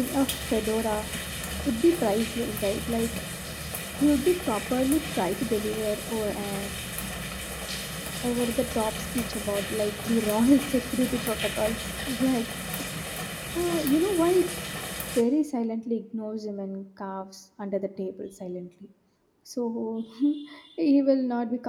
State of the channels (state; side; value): identical; both; correlation 1.00